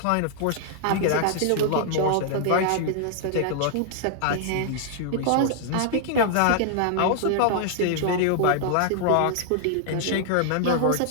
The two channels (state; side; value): different; both; correlation 0.00